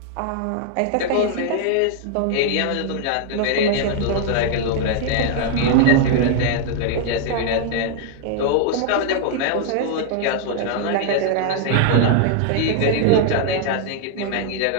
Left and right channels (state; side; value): different; both; correlation 0.00